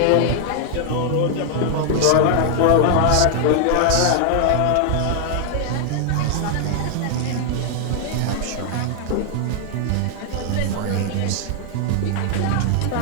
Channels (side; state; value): both; different; correlation 0.00